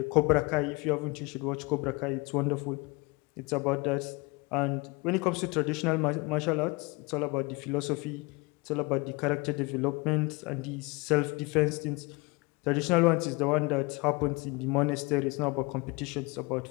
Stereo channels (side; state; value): right; quieter; 26.4 dB